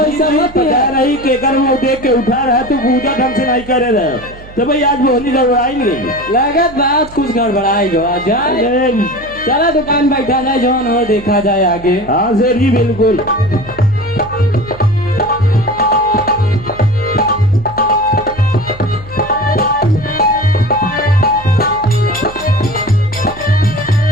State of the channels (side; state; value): right; noise; hum, 19 dB below the sound